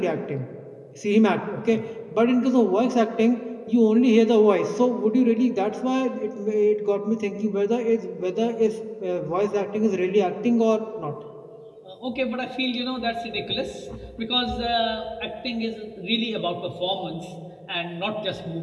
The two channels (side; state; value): both; identical; correlation 1.00